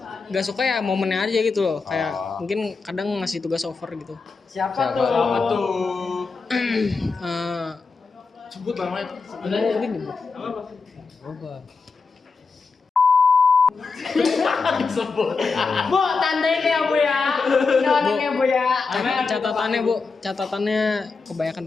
gak suka ya momennya aja gitu loh. Kayak mungkin kadang ngasih tugas over gitu. Siapa tuh? Sebut namanya. Ada ini bu. Bu, tandain ya Bu ya. Ini orangnya Bu ya. Catatannya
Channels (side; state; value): right; quieter; 4.6 dB